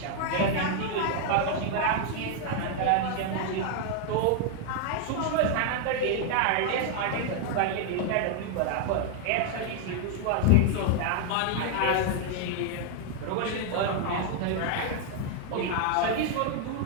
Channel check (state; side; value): different; both; correlation 0.00